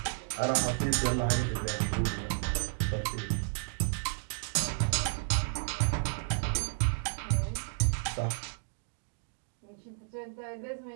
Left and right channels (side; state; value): left; silent; digital silence